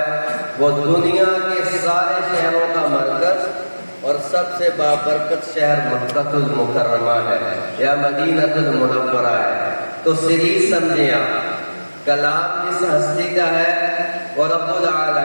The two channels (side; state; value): both; inverted; correlation -1.00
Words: وہ دنیا کے سارے شہروں کا مرکز اور سب سے بابرکت شہر مکہ المکرمہ ہے یا مدینہ المنورہ ہے. تو سیریز سمجھیں آپ، کلام جس ہستی کا ہے وہ رب